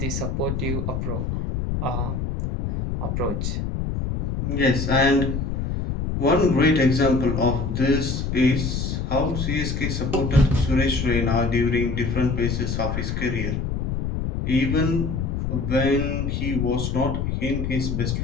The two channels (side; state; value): left; noise; rumble, 2 dB below the sound